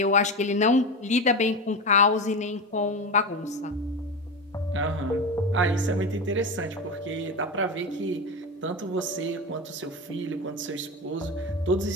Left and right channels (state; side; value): normal; both; correlation 0.21